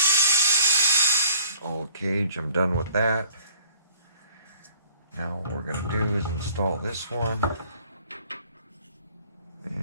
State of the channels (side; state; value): both; inverted; correlation -0.55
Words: Old cage, I'm done with that. Now what we're gonna do is install this one.